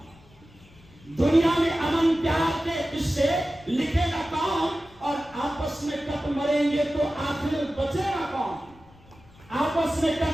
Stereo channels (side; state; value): left; noise; rumble, 26 dB below the sound